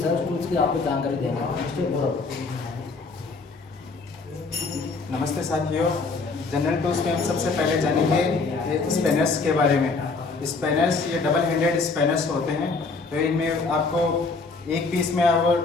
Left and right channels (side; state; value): right; quieter; 4.1 dB